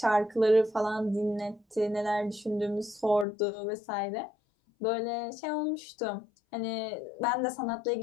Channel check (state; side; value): drops out; right; at 3.2 s